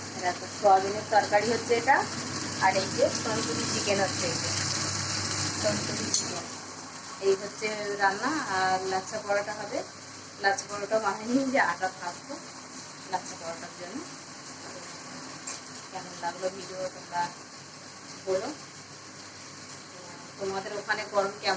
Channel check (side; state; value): both; identical; correlation 1.00